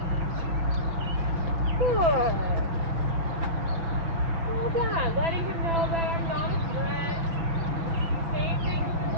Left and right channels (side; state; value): left; late; 6.1 ms